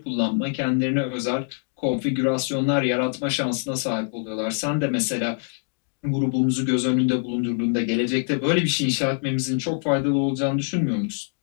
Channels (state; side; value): silent; right; 62 dB below the other